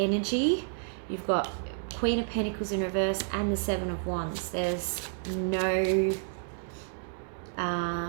You've got Queen of Pentacles in reverse and the Seven of Wands. There's no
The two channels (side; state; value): left; silent; digital silence